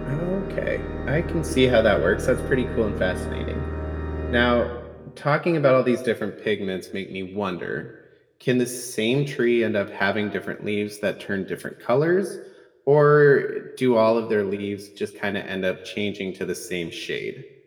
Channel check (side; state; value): both; identical; correlation 1.00